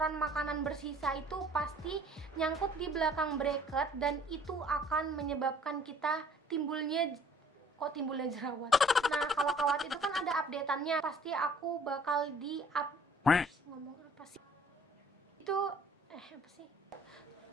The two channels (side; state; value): both; normal; correlation 0.56